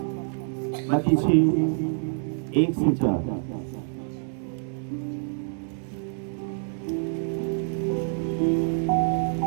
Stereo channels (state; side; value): silent; left; 60 dB below the other